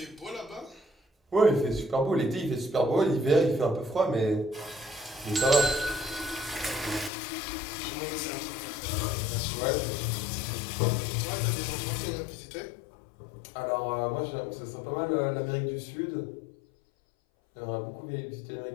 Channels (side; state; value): right; drops out; at 7.1 s